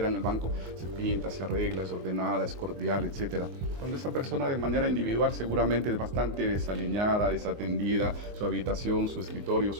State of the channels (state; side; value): late; left; 24 ms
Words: en el banco, se pinta, se arregla, es ordenada, es cordial, etc. Cuando esa persona de manera individual seguramente es bastante desaliñada, desatendida, su habitación, su escritorio,